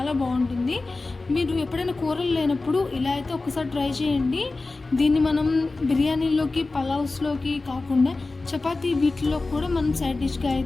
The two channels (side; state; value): right; quieter; 3.4 dB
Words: బాగుంటుంది. మీరు ఎప్పుడైనా కూరలు లేనప్పుడు ఇలా అయితే ఒకసారి ట్రై చేయండి. దీన్ని మనం బిర్యానీలోకి, పలావ్స్లోకి కాకుండా చపాతీ వీటిలో కూడా మనం సైడ్ డిష్గా